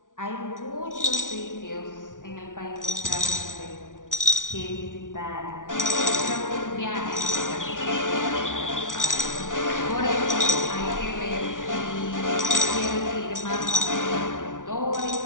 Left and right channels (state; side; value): late; right; 0.88 ms